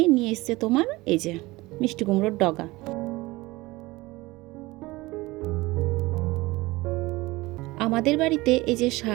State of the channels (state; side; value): quieter; left; 20.6 dB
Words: নিয়ে এসছে তোমার এই যে মিষ্টি কুমড়োর ডগা। আমাদের বাড়িতে এই যে